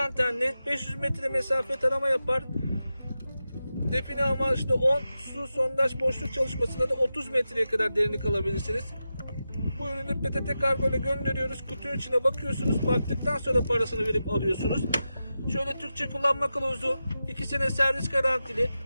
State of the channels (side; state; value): both; inverted; correlation -0.91